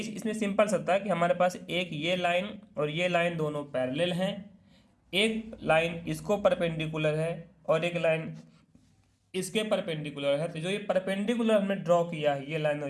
इसमें सिंपल सा था कि हमारे पास एक ये लाइन और ये लाइन दोनों पैरेलल हैं, एक लाइन इसको परपेंडिकुलर है और एक लाइन इसके परपेंडिकुलर है, तो जो ये परपेंडिकुलर हमने ड्रॉ किया है ये लाइन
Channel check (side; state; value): both; identical; correlation 1.00